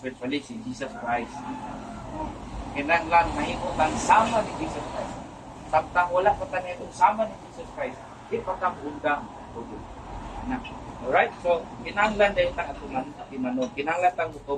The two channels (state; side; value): identical; both; correlation 1.00